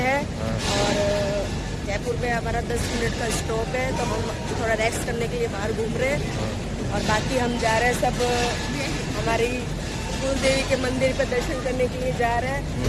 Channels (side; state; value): both; identical; correlation 1.00